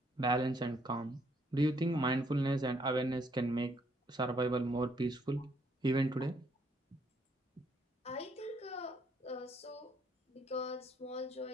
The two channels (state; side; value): normal; both; correlation 0.69